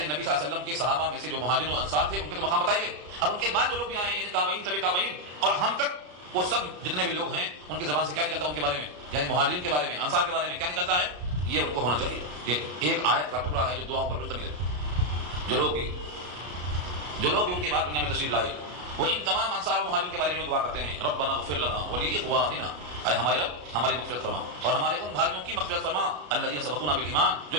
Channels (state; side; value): late; left; 34 ms